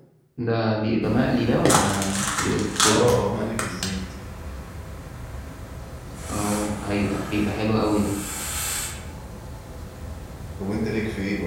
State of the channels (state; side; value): identical; both; correlation 1.00